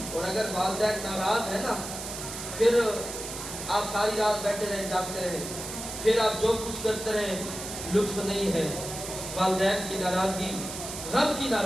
اور اگر والدین ناراض ہے نا، پھر آپ ساری رات بیٹھے رہیں جاگتے رہیں، پھر آپ جو کچھ کرتے رہیں لطف نہیں ہے۔ والدین کی ناراضگی رب کی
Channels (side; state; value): right; noise; hiss, 8 dB below the sound